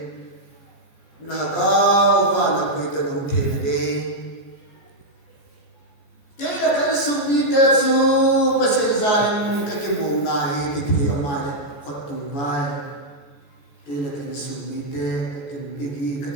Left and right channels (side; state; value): right; late; 14 ms